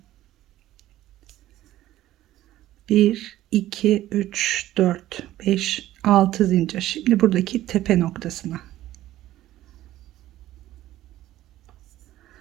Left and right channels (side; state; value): left; quieter; 14.4 dB